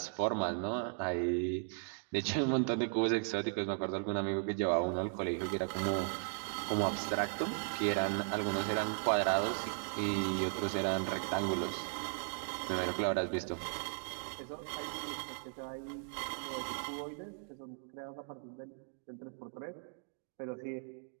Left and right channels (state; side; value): silent; left; digital silence